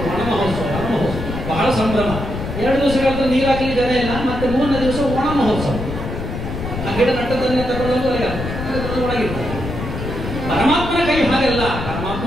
ವನ ಮಹೋತ್ಸವ ಬಹಳ ಸಂಭ್ರಮ. 2 ದಿವಸಗಳ ನೀರು ಹಾಕಲಿಕ್ಕೆ ಜನ ಇಲ್ಲ. ಮತ್ತೆ 3ನೇ ದಿವಸ ಒಣ ಮಹೋತ್ಸವ. ಆ ಗಿಡ ನಟ್ಟದನ್ನೇ ತಗೊಂಡು ಒಳಗಿರ್ತಾರೆ. ಪರಮಾತ್ಮನ ಕೈ ಹಾಗೆಲ್ಲ.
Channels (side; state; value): left; noise; rumble, 6 dB below the sound